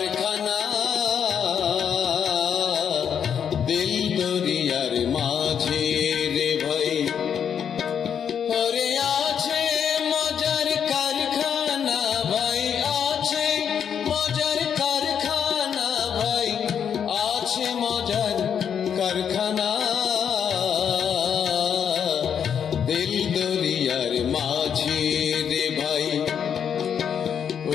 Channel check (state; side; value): quieter; right; 8.0 dB